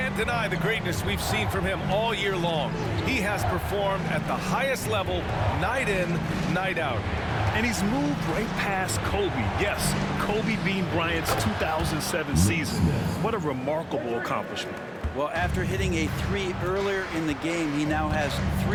deny the greatness we've seen from him all year long. He has performed at the highest level, night in, night out. And he's moved right past Kobe. Yes, Kobe Bean Bryant's 2007 season. What a remarkable accomplishment. Well, after hitting a 3 earlier in the game, he now has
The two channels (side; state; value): both; identical; correlation 1.00